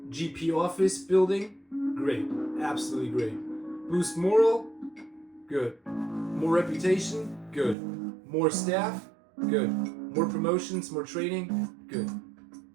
GP office building. Great. Absolutely great. Boost moral. Good. More reputation. Good. More staff. Good. More promotions. More training. Good.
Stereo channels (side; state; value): left; drops out; at 7.8 s